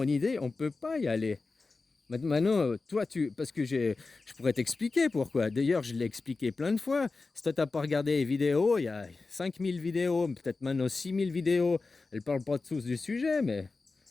idée, on peut pas y aller. Maintenant, toi, parce que je pourrais t'expliquer pourquoi. D'ailleurs, je l'ai expliqué plein de fois. Si toi, tu n'as pas regardé les vidéos, il y a 5000 vidéos, peut-être maintenant 6000 vidéos. Elles ne parlent pas tous du sujet, mais...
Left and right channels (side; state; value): right; quieter; 3.9 dB